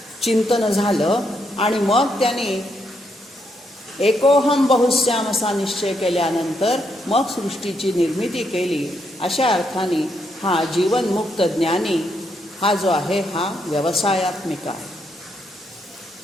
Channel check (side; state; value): both; normal; correlation 0.77